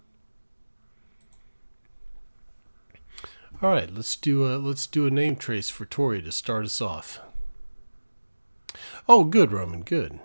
All right, let's do a name trace for Tori to start us off. Oh, good, Roman. Good.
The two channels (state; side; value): inverted; both; correlation -1.00